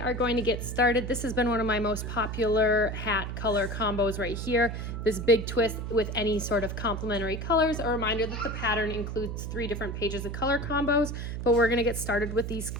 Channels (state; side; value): noise; right; hum, 5 dB below the sound